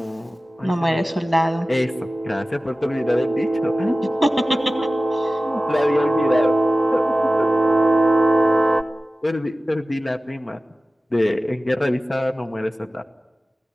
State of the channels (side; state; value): both; normal; correlation 0.96